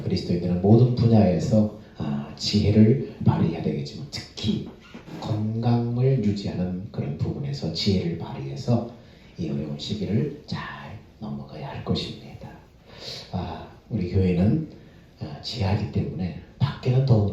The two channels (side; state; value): both; identical; correlation 1.00